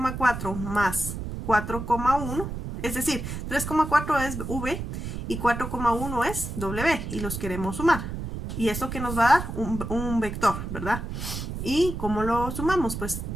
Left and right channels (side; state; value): right; noise; rumble, 6 dB below the sound